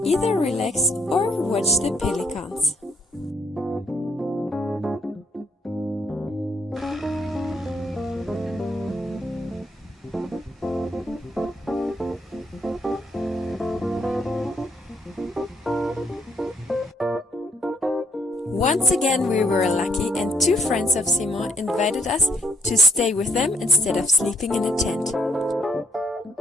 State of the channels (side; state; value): both; normal; correlation 0.68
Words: either relax or watch the pelicans. Once again we were lucky, and two friends of Simon invited us to stay with them instead of sleeping in a tent.